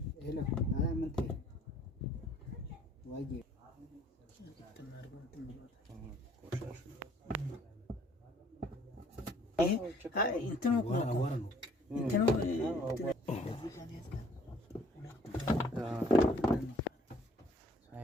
ሄሎ ምን ትይ ዋዬ እንትኑ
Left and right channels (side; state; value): both; normal; correlation 0.59